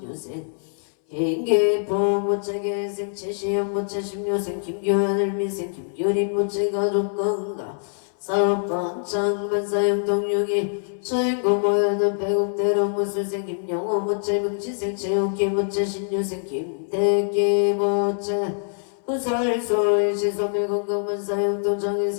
김기포 모체 개생 최시영 모체 십료생 김규현 일미생 김규린 모체 가족 건강 사업번창 만사형동용이 주인공 모여는 배국대로 무술생 김영호 모체 명치생 최욱기 모체 신유생 김태기 모체 부설소의 시소매 건강 만사형동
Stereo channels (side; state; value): right; silent; 60 dB below the other